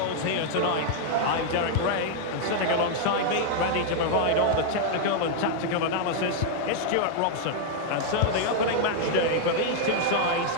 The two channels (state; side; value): different; both; correlation -0.01